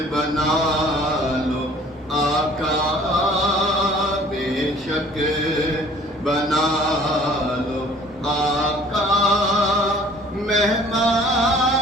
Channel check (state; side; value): normal; both; correlation 0.52